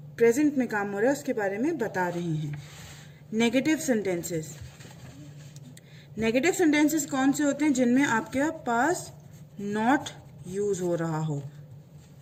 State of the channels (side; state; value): both; identical; correlation 1.00